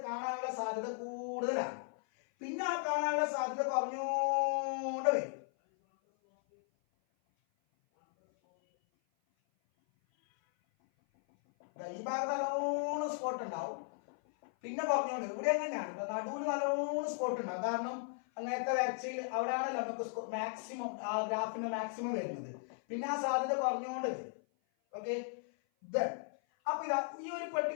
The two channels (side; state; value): right; silent; 53 dB below the other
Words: കാണാനുള്ള സാധ്യത കൂടുതലാണ്. പിന്നെ ആ കാണാനുള്ള സാധ്യത കുറഞ്ഞോണ്ട് വരും. ഈ ഭാഗത്ത് നല്ലോണം സ്പോട്ട് ഉണ്ടാവും, പിന്നെ കുറഞ്ഞോണ്ട്. ഇവിടെ എങ്ങനെയാണ് നടുവിൽ നല്ലോണം സ്പോട്ട് ഉണ്ടാവും. കാരണം അങ്ങനത്തെ വരച്ചയിൽ അവിടെയാണല്ലോ നമുക്ക് മാക്സിമം ആ ഗ്രാഫിന്റെ മാക്സിമം വരുന്നത്. പിന്നെ ആ സാധ്യത കുറഞ്ഞുകൊണ്ട് വരും. ഓക്കെ, അപ്പൊ ഇതാ ഈ ഒരു